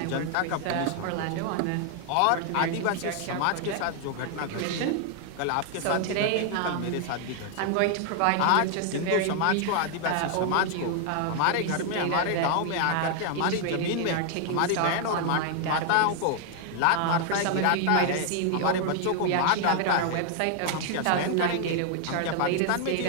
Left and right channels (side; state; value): both; different; correlation 0.00